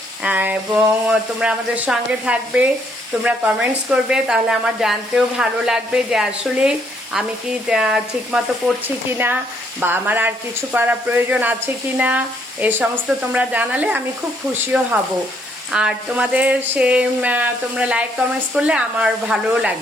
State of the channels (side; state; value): both; normal; correlation 0.70